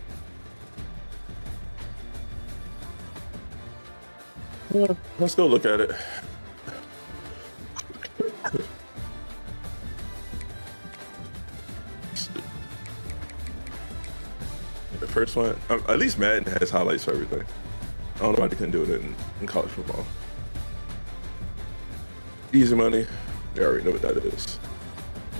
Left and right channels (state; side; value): inverted; both; correlation -1.00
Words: Well, let's go look at it. The first one, at least Madden has highlights for everything. I don't know why they couldn't do it in college football. Easy money, they already know what that is.